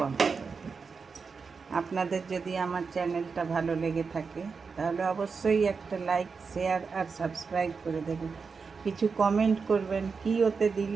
করে দেব। আপনাদের যদি আমার চ্যানেলটা ভালো লেগে থাকে তাহলে অবশ্যই একটা লাইক, শেয়ার আর সাবস্ক্রাইব করে দেবেন। কিছু কমেন্ট করবেন, কী ওতে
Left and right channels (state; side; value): quieter; left; 5.1 dB